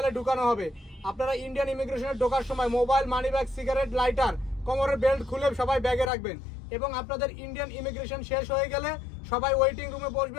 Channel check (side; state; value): right; drops out; at 6.1 s